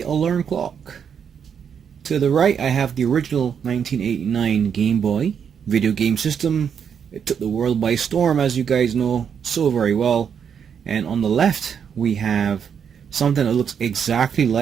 Alarm Clock. To the right I have the original 1989 Game Boy video game system. It took the world by storm, as you guys know so very well. And on the left we have something that looks exactly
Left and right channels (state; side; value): quieter; left; 7.5 dB